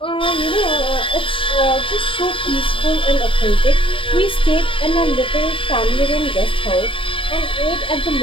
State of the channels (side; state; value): right; late; 0.25 ms